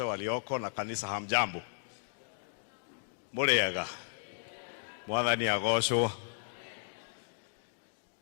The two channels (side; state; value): right; silent; digital silence